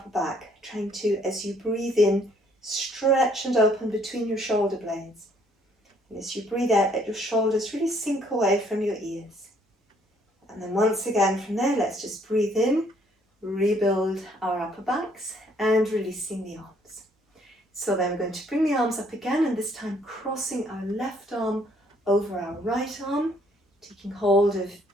back, trying to, as you breathe in, stretch and open between your shoulder blades. And as you breathe out, let your shoulders really sink away from your ears. And then once again from there, let's just breathe in, rebuild our upper backs, and releasing the arms. So then we're going to bring the arms up again, and this time crossing our left arm over our right arm, taking hold of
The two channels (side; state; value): both; normal; correlation 0.65